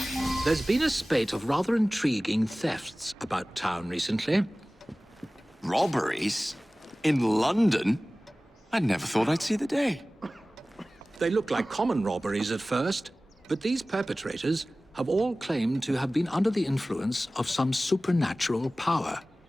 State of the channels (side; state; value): both; normal; correlation 0.97